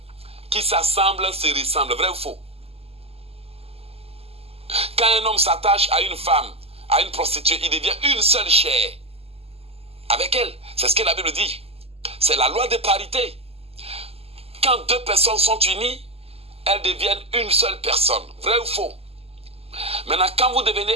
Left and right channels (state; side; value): late; left; 0.29 ms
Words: Qui s'assemble se ressemble, vrai ou faux? Quand un homme s'attache à une femme, à une prostituée, il devient une seule chair avec elle. C'est ce que la Bible dit. C'est la loi de parité. Quand deux personnes sont unies, elles deviennent une seule personne. Vrai ou faux? Maintenant, quand vous devenez